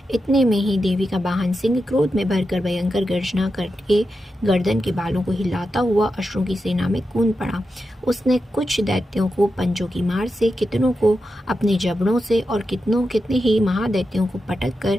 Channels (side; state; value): both; normal; correlation 0.88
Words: इतने में ही देवी का वाहन सिंह क्रोध में भरकर भयंकर गर्जना करके गर्दन के बालों को हिलाता हुआ असुरों की सेना में कूद पड़ा। उसने कुछ दैत्यों को पंजों की मार से, कितनों को अपने जबड़ों से और कितने ही महादैत्यों को पटक